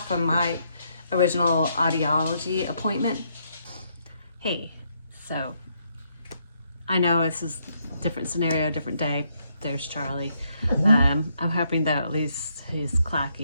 from my original audiology appointment. Hey, so I know this is different scenario, different day. There's Charlie. I'm hoping that at least he's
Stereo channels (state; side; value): inverted; both; correlation -0.75